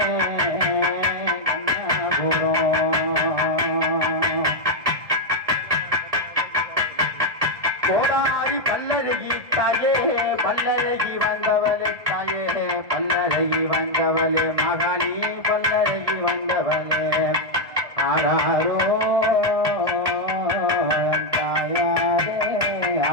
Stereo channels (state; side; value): late; left; 1.6 ms